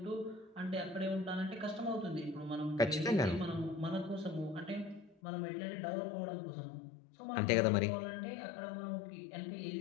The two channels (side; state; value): right; drops out; at 5.2 s